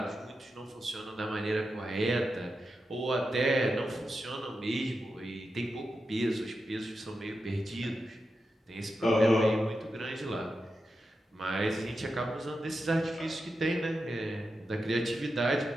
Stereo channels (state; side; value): normal; both; correlation 0.89